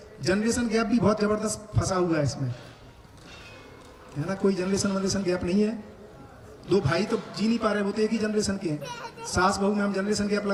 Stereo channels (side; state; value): both; identical; correlation 1.00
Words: जनरेशन गैप भी बहुत जबरदस्त फंसा हुआ है इसमें, है ना। कोई जनरेशन गैप नहीं है, दो भाई तो जी नहीं पा रहे, वो तो एक ही जनरेशन के हैं। सास बहू में हम जनरेशन गैप